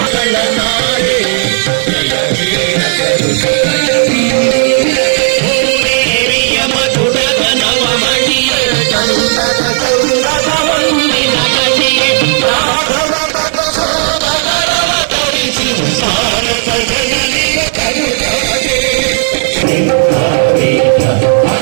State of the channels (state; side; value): silent; left; digital silence